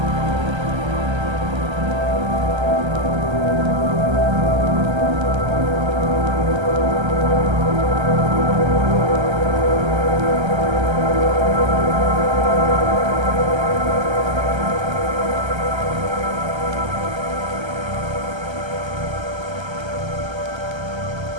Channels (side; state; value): left; late; 1.3 ms